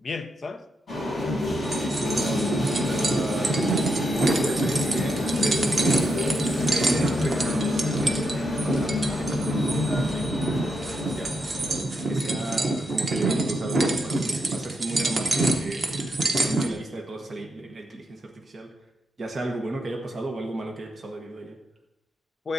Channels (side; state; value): both; normal; correlation 0.82